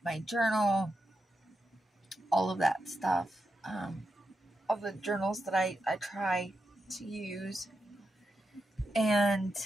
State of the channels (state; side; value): normal; both; correlation 0.87